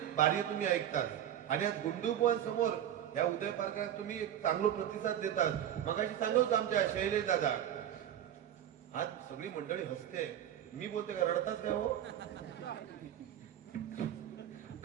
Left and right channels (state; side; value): quieter; left; 10.7 dB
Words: बारी तुम्ही ऐकतात आणि आज गुंडू बुवांसमोर या उदय पार्कात तुम्ही एक चांगला प्रतिसाद देतात मगाशी सांगत होतो आमच्या शैलेश दादा आज सगळी मंडळी हसते मी बोलते का रडताच काय हो